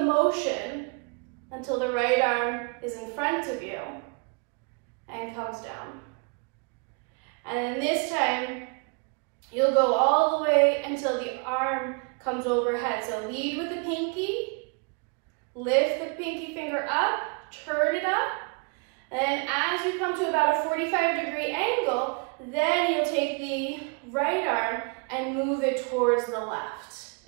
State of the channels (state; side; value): quieter; left; 35.3 dB